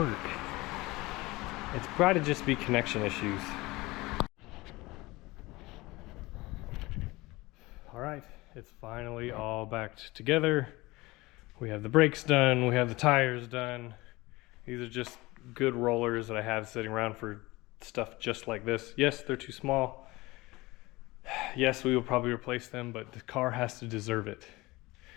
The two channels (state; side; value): quieter; right; 21.3 dB